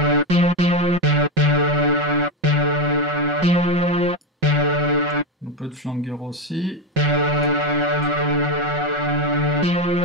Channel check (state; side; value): normal; both; correlation 0.10